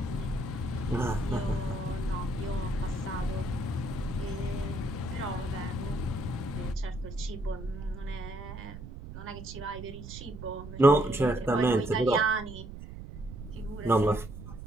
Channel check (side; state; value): right; noise; rumble, 11 dB below the sound